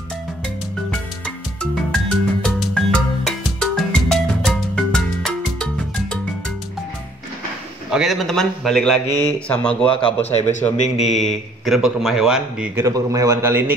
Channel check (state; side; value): normal; both; correlation 0.62